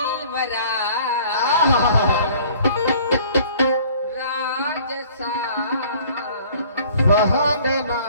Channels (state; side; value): inverted; both; correlation -0.52